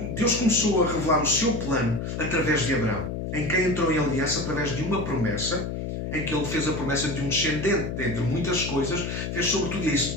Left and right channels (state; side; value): noise; left; hum, 4 dB below the sound